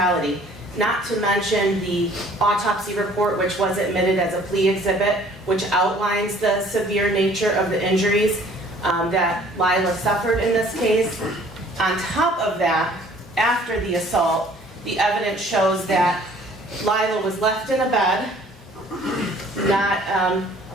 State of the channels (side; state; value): both; normal; correlation 0.54